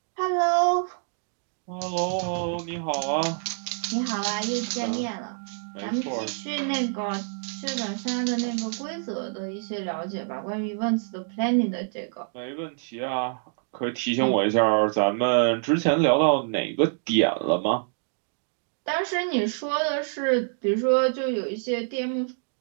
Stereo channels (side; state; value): left; silent; digital silence